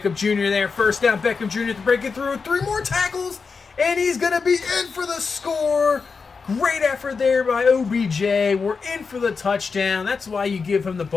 Jr. there. First down, Beckham Jr. to break it through. 3 more tackles, and he's going to be in for the score. Great effort there by OBJ. We're in for the touchdown. That's why you give him the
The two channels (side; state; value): right; quieter; 5.0 dB